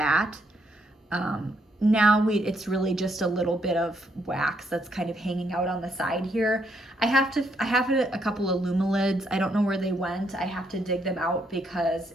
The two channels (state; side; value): normal; both; correlation 0.74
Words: Now it's really just a little bit of wax that's kind of hanging out on the side here. I have a couple of Lumilids. I don't know where they went. I have to dig them out because